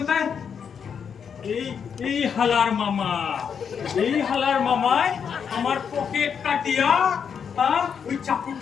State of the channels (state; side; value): quieter; right; 7.1 dB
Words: কোথায়? এই হালার মামায় আমার পকেট কাটিয়া, ওই